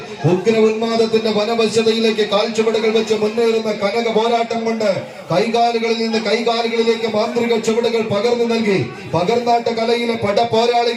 ഉഗ്ര ഉന്മാദത്തിന്റെ വനവശ്യതയിലേക്ക് കാൽച്ചുവടുകൾ വെച്ച് മുന്നേറുന്ന കനക പോരാട്ടം കൊണ്ട് കൈകാലുകളിൽ നിന്ന് കൈകാലുകളിലേക്ക് മാന്ത്രിക ചുവടുകൾ പകർന്നു നൽകി പകർന്നാട്ട കലയിലെ പട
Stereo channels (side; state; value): both; identical; correlation 1.00